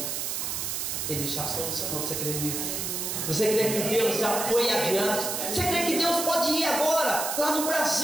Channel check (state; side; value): noise; right; hiss, 2 dB below the sound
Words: Ele já solucionou. Você crê nisso? Você crê que Deus já foi adiante? Você crê que Deus pode ir agora, lá no